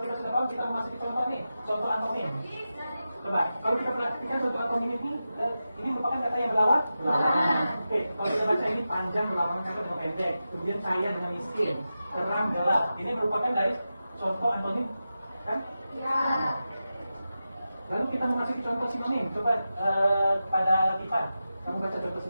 sudah paham, kita memasuki contoh nih, contoh antonim. Coba, kalau kita perhatikan contoh antonim ini merupakan kata yang berlawan. Oke, kalau kita baca ini panjang melawan kata dengan pendek, kemudian kaya dengan miskin, terang gelap. Ini merupakan dari contoh antonim, kan? Ya. Lalu kita memasuki contoh sinonim. Coba pada kita, kamu baca contoh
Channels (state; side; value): inverted; both; correlation -0.92